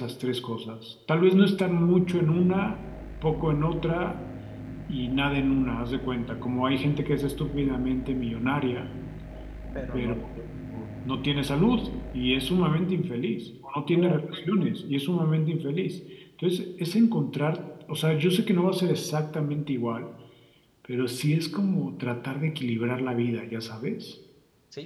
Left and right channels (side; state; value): both; identical; correlation 1.00